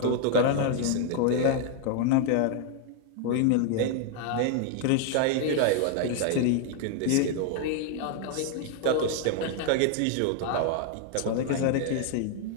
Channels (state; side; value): different; both; correlation 0.00